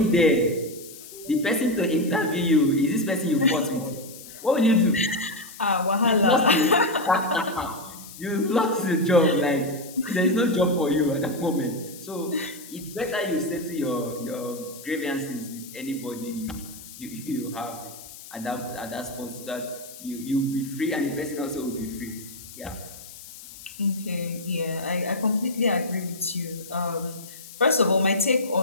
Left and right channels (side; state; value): left; noise; hiss, 16 dB below the sound